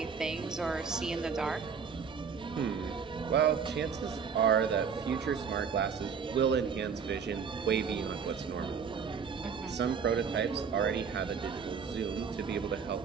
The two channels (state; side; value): quieter; left; 6.3 dB